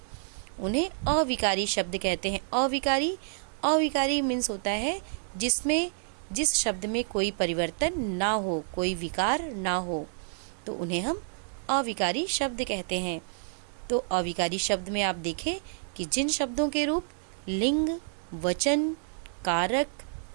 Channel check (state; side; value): silent; left; digital silence